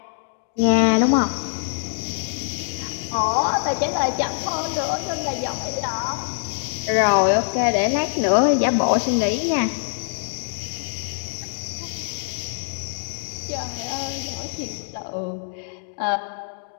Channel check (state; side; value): silent; right; digital silence